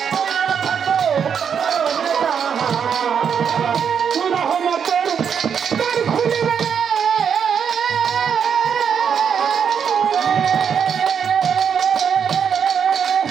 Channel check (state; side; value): quieter; left; 7.4 dB